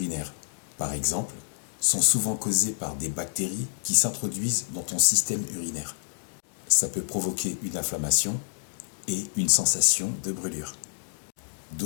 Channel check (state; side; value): silent; right; digital silence